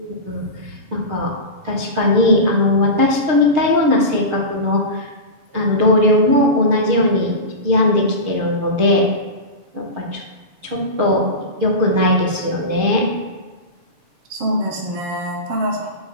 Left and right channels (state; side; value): late; left; 6.6 ms